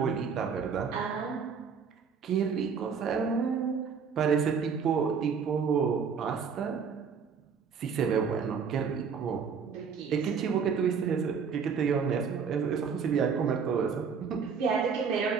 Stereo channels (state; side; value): quieter; left; 6.2 dB